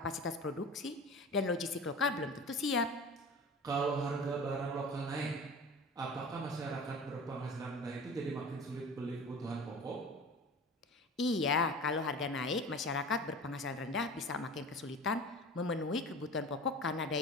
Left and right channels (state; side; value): normal; both; correlation 0.36